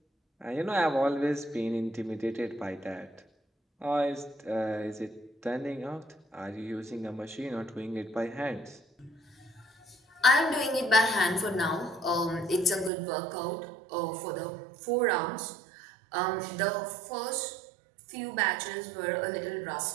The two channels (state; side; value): drops out; left; at 12.9 s